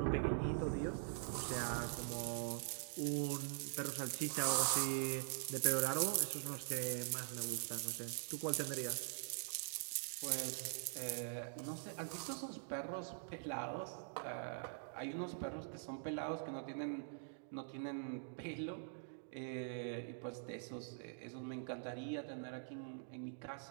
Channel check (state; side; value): silent; left; digital silence